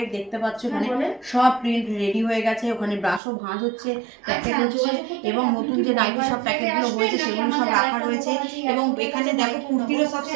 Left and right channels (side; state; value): left; drops out; at 3.2 s